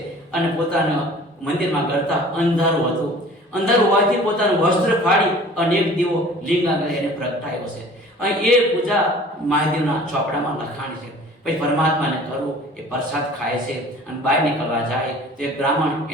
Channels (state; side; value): normal; both; correlation 0.47